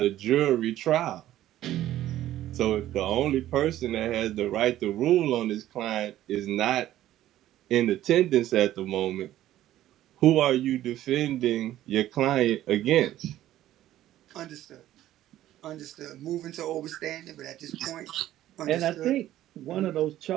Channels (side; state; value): left; quieter; 13.5 dB